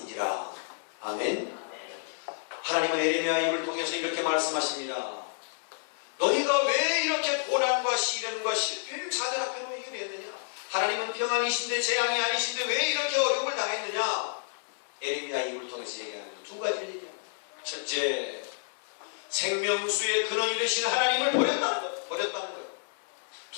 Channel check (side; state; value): right; silent; 58 dB below the other